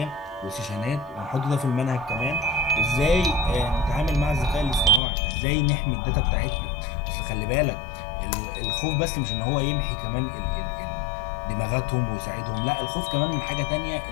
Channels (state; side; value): drops out; right; at 5.0 s